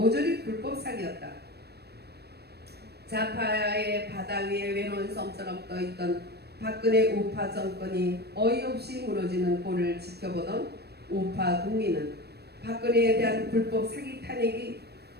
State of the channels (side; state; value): left; late; 0.47 ms